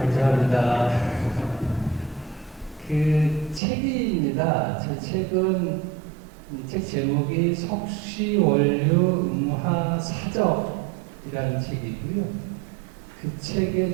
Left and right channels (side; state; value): left; drops out; at 3.6 s